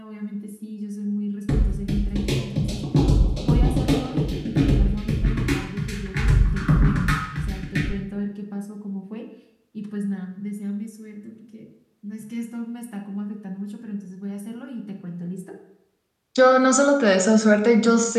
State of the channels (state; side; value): identical; both; correlation 1.00